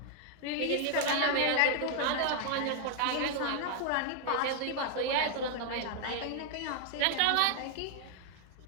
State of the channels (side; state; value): both; different; correlation 0.00